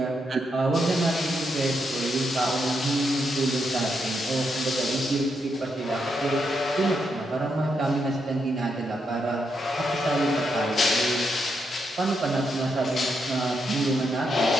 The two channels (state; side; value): normal; both; correlation 0.81